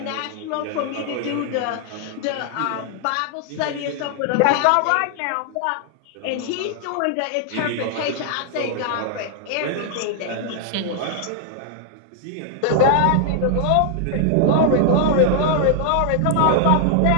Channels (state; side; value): different; both; correlation 0.00